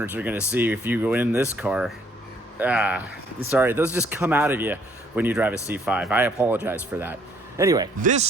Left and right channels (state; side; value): normal; both; correlation 0.63